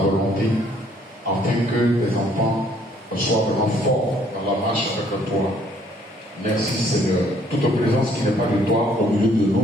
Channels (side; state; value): both; normal; correlation 0.63